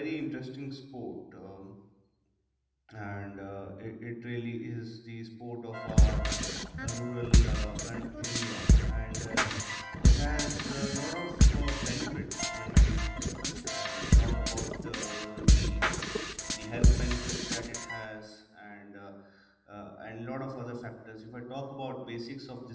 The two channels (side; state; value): both; identical; correlation 1.00